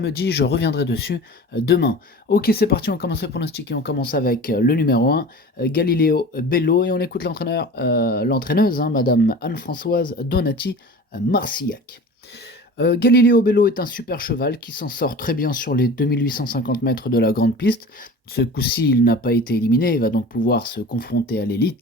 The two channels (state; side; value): normal; both; correlation 0.37